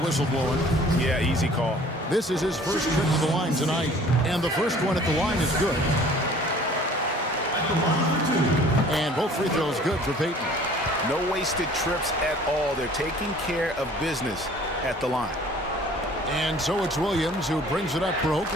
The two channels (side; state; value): both; normal; correlation 0.51